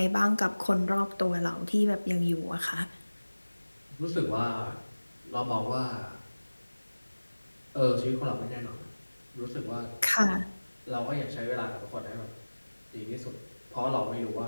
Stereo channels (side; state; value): both; inverted; correlation -1.00